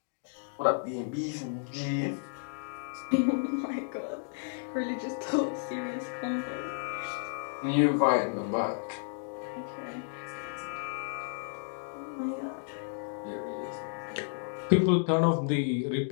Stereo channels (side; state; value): right; silent; digital silence